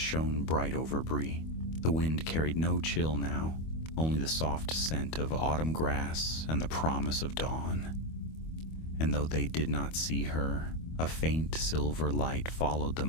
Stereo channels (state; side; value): late; right; 25 ms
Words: bright over Bree. The wind carried no chill now, only the soft scent of autumn grass and the promise of dawn. And though they did not see her, a faint silver light followed